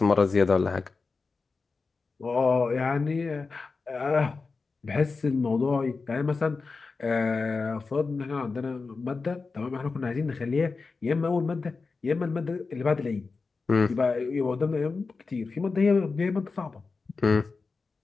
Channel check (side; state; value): right; quieter; 4.3 dB